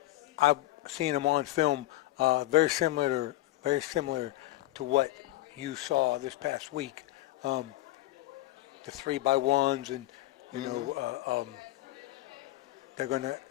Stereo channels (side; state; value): right; quieter; 17.6 dB